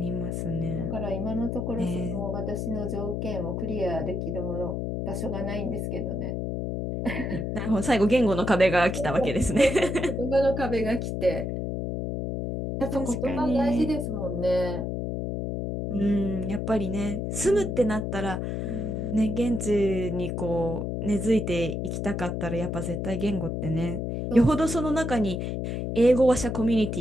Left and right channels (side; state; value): left; noise; hum, 2 dB below the sound